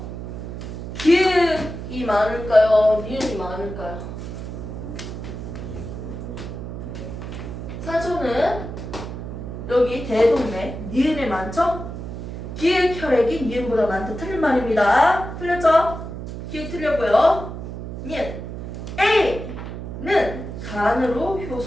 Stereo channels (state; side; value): noise; right; hum, 8 dB below the sound